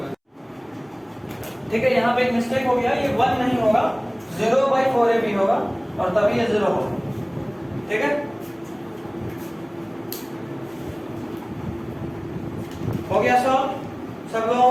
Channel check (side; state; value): both; identical; correlation 1.00